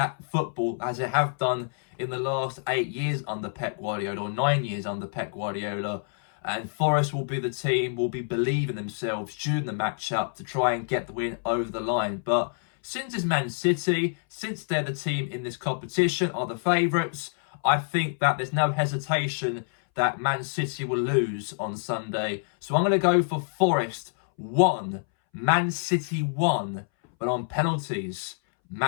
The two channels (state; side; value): silent; right; 60 dB below the other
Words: football as they have done in the last 8 years under Pep Guardiola, or 9 years under Pep Guardiola. And Forest will be the team, will be believing themselves during the matchup to try and get the win over the line. But since it's Man City, since they're the team in this competition, are the favourites, I think that there's no hesitation that Man City will lose on Sunday. So I'm going to go for Forest 1, Man City 1, but on penalties.